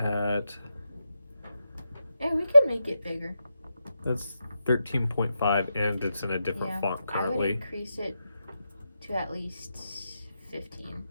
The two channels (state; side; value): inverted; both; correlation -0.87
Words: Yeah, we could make it bigger. That's 13.5 and it's in a different font I would currently. increase it to at least 15.